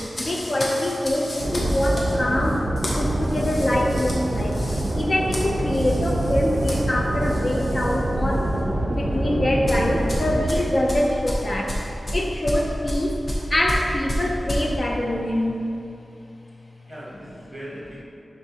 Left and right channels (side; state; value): both; normal; correlation 0.95